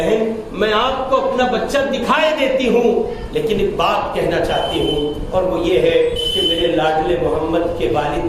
میں آپ کو اپنا بچہ دکھائے دیتی ہوں، لیکن ایک بات کہنا چاہتی ہوں، اور وہ یہ ہے کہ میرے لاڈلے محمد کے والد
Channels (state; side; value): identical; both; correlation 1.00